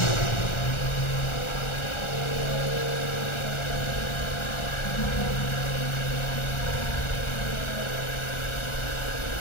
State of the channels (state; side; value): late; right; 1.4 ms